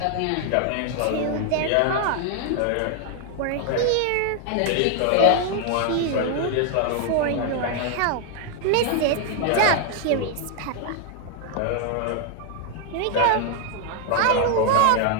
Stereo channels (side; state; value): both; different; correlation 0.00